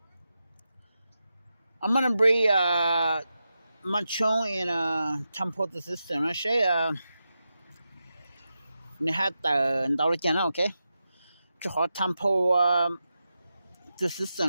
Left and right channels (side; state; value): both; inverted; correlation -0.90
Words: I'm gonna bring machong in Tampo sister na siya ni hat daw kia na okay. 就好探泡就是什